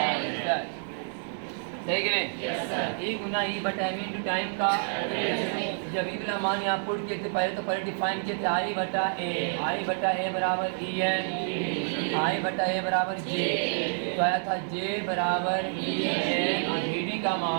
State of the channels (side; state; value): left; silent; digital silence